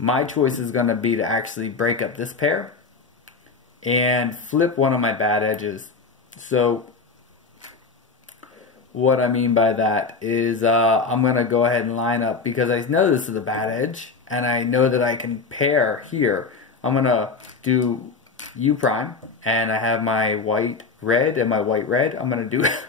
choice is going to be to actually break up this pair and flip one of my bad edges. So what I mean by that is I'm going to go ahead and line up, because I know this is a bad edge and I know that I can pair here. I'm going to do U prime, and I have my white red and my white red. I'm going to do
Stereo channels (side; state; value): right; quieter; 4.5 dB